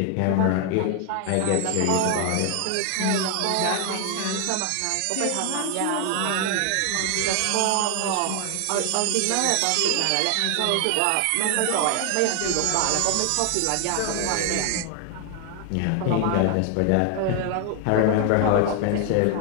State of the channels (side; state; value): both; different; correlation 0.00